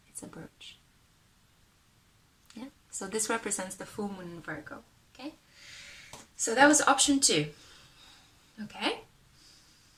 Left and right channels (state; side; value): identical; both; correlation 1.00